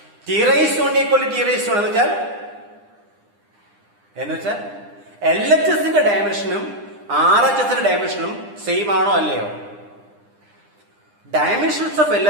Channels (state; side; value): late; left; 9.8 ms